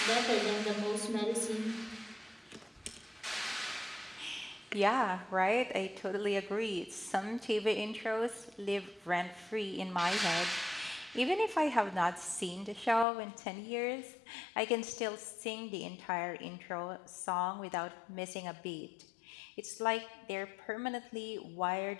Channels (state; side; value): drops out; right; at 13.1 s